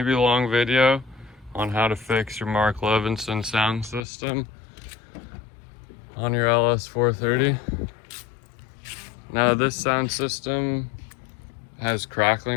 long video on how to fix your Mark Levinson sound system on your LS430. Now this sound system has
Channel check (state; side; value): drops out; right; at 4.0 s